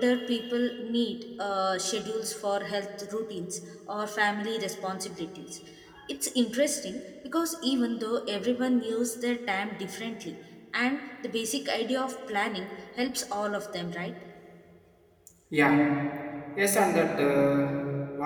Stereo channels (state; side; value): identical; both; correlation 1.00